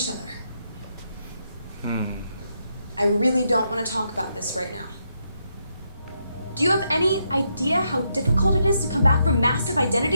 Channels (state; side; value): inverted; both; correlation -0.80